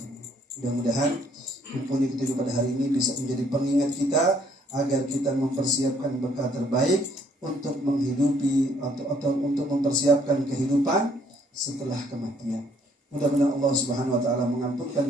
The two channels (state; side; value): normal; both; correlation 0.65